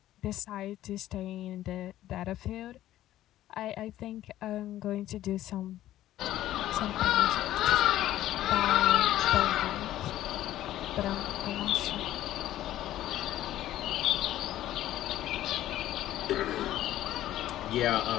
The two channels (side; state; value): right; quieter; 13.6 dB